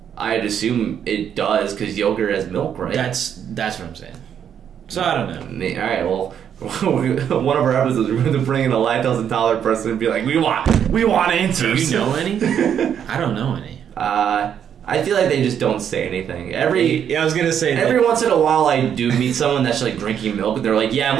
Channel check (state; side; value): quieter; left; 8.7 dB